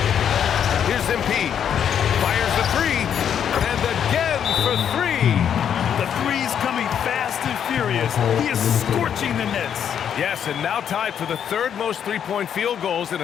Here's MP. Fires the three. And again for 3. The three's coming fast and furious. He is scorching the nets. Yes, and now tied for the 3rd most three-point field goals in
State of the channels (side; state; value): right; quieter; 8.6 dB